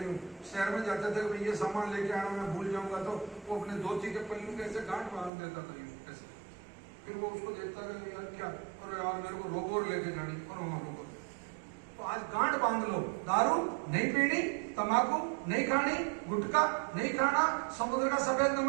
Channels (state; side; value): drops out; left; at 5.3 s